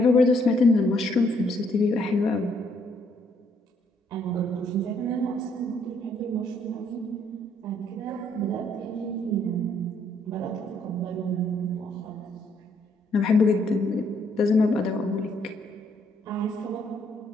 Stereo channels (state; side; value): normal; both; correlation 0.69